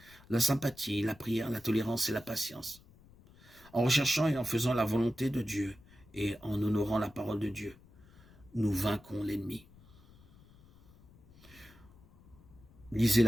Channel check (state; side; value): noise; left; rumble, 25 dB below the sound